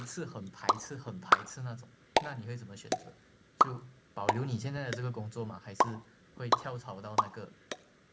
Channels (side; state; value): both; identical; correlation 1.00